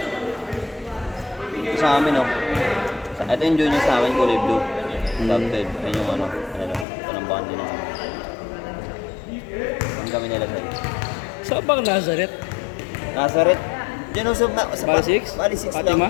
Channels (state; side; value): drops out; right; at 6.9 s